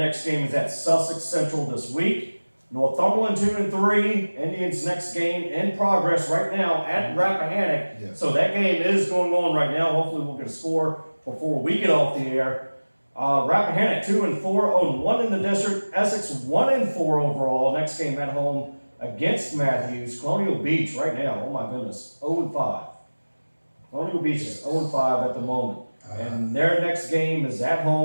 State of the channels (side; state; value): both; inverted; correlation -1.00